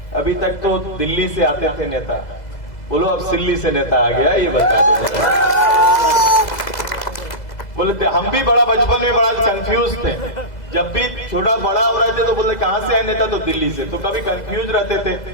अभी तक तो दिल्ली से आते थे नेता, बोलो अब सिल्ली से नेता आ गया, ये बता दो। बोले हम भी बड़ा बचपन में बड़ा कंफ्यूज थे। जब भी छोटा बड़ा हो रहे थे तो बोले कहां से आए नेता, तो दिल्ली से। तो कभी कंफ्यूज रहते थे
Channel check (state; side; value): late; right; 2.0 ms